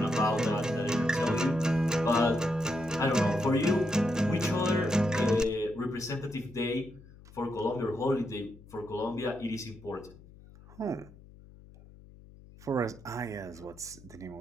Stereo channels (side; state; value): left; noise; hum, 21 dB below the sound